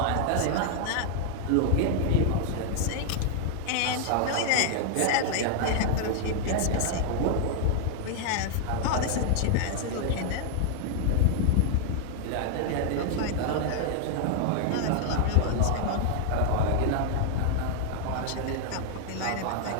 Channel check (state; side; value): different; both; correlation 0.00